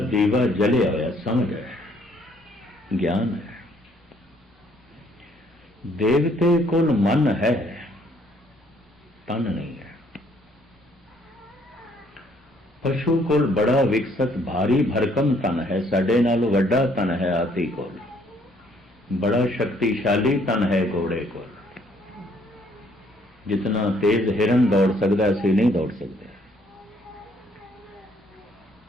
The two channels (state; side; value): normal; both; correlation 0.65